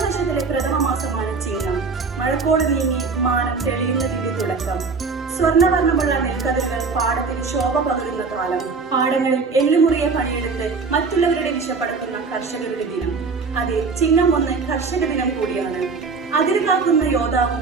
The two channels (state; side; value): quieter; left; 4.6 dB